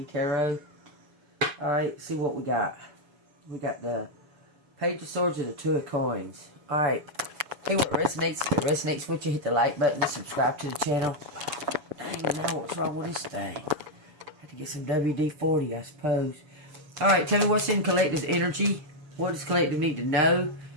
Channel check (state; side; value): late; left; 7.0 ms